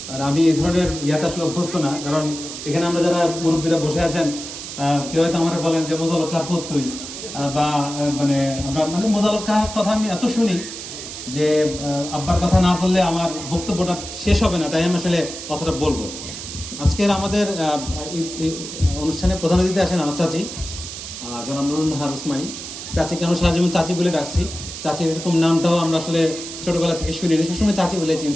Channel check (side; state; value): right; noise; hiss, 9 dB below the sound